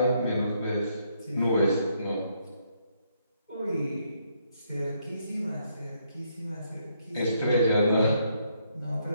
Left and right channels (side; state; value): both; inverted; correlation -0.73